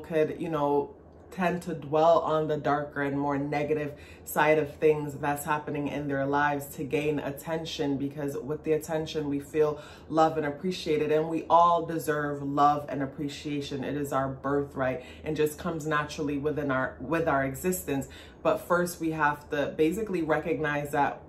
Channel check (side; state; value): both; identical; correlation 1.00